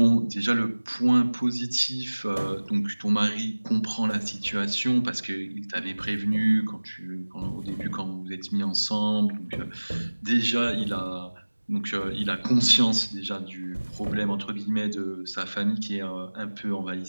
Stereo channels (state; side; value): inverted; both; correlation -1.00